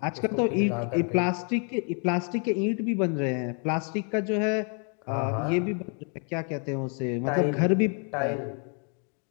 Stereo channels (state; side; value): quieter; right; 39.8 dB